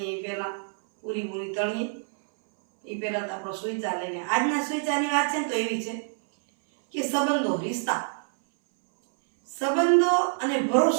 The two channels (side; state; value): left; silent; 61 dB below the other